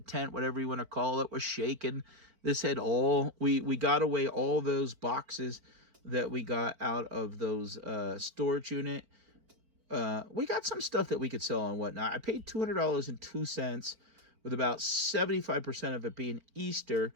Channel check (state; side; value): late; left; 4.4 ms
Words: whatever you want to call it, was shaking. This had we got away all those boxes that we got out of those storage unit. We got some stuff that we could sell on Whatnot. I paid $200.02, with about 75% of it being Easter.